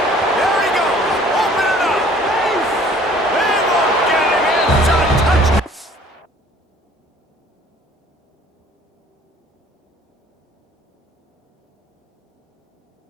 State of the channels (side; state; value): both; normal; correlation 0.54